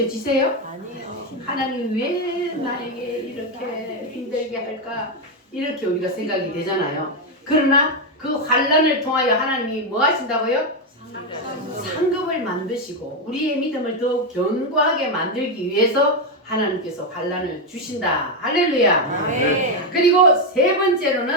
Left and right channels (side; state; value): both; normal; correlation 0.05